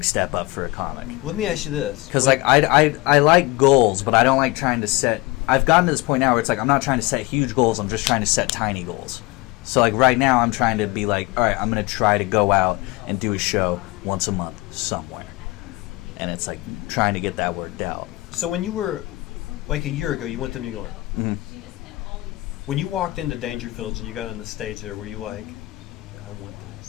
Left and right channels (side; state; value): right; quieter; 21.3 dB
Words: step up for a comic. Let me ask you this. Because like I like goals, but I don't like trying to set. I've gotten to this point now where it's like I'm not trying to set huge goals. I'm just trying to set tiny goals. So like right now I'm trying to be like, all right, I'm gonna try to go out and do a show once a month somewhere, and it's like trying to get that worked out. So when you were like a year ago, you went to New York. Mm-hmm. When you walked into Dangerfield and you got on the stage there, were you like, I want